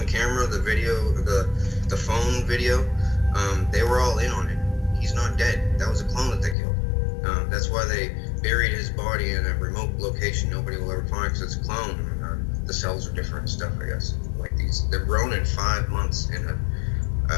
camera, the video, the phone video, they were all in on it. He's not dead. That was a clone that they killed. That's why they buried his body in a remote location nobody will ever find, because it's a clone. And, the cells are different and stuff, I guess. Like these, they're grown in 5 months in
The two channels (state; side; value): drops out; right; at 6.6 s